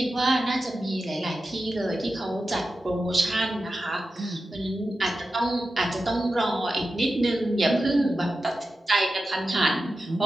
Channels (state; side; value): normal; both; correlation 0.92